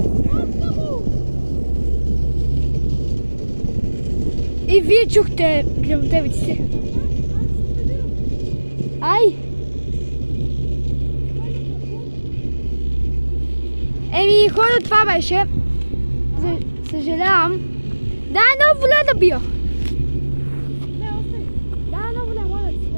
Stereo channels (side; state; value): both; inverted; correlation -1.00